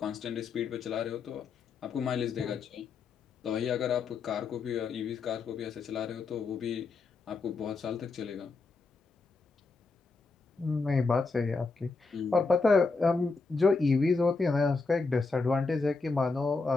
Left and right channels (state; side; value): quieter; right; 4.2 dB